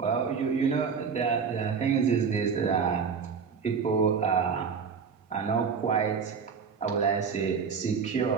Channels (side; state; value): left; quieter; 6.1 dB